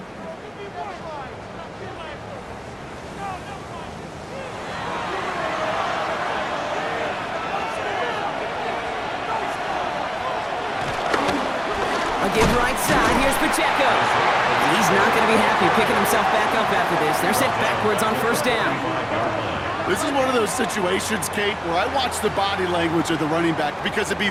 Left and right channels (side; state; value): both; identical; correlation 1.00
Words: A give right side, here's Pacheco. And he's not going to be happy picking himself back up after this. They're sent backwards on 1st down. This is one of those situations, Kate, where I watch the body language of the running back because it'd be